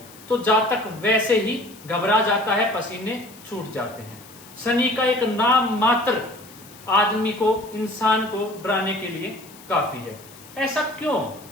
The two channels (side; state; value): left; noise; hiss, 21 dB below the sound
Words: तो जातक वैसे ही घबरा जाता है, पसीने छूट जाते हैं। शनि का एक नाम मात्र आदमी को, इंसान को डराने के लिए काफी है। ऐसा क्यों?